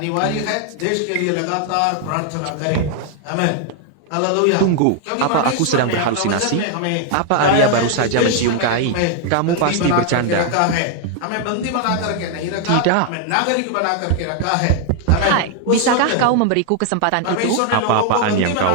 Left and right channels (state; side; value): different; both; correlation 0.00